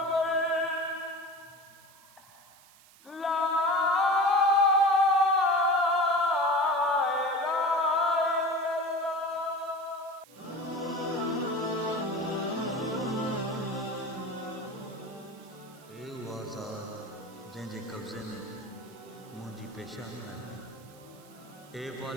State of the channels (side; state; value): right; noise; hiss, 25 dB below the sound